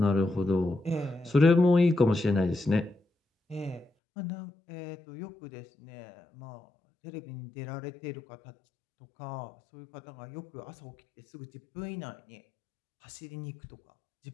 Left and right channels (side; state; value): right; drops out; at 3.9 s